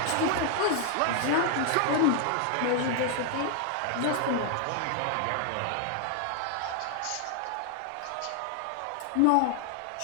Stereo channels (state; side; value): different; both; correlation 0.00